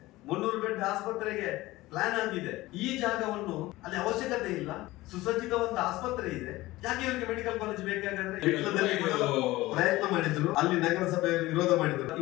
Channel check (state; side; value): quieter; right; 18.5 dB